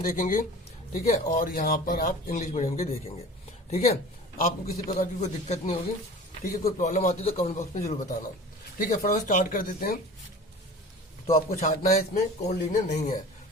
देखेंगे। ठीक है, और यहाँ पर आप इंग्लिश मीडियम के देखेंगे। ठीक है, आपको किसी प्रकार की कोई दिक्कत नहीं होगी। ठीक है, कोई प्रॉब्लम आती है तो कमेंट बॉक्स में जरूर बताना। ठीक है, फटाफट स्टार्ट कर देते हैं। तो आपको छांटना है इसमें कौन लीनियर नहीं है।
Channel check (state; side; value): normal; both; correlation 0.40